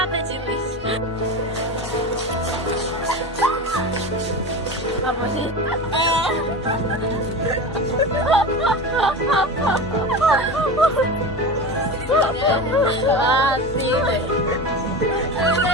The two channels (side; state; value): both; normal; correlation 0.27